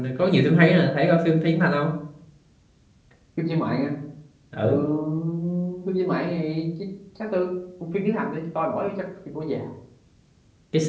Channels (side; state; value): both; identical; correlation 1.00